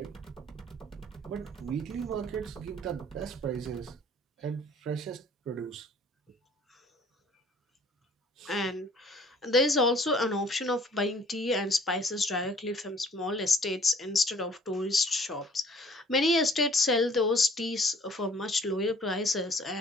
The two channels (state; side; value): normal; both; correlation 0.55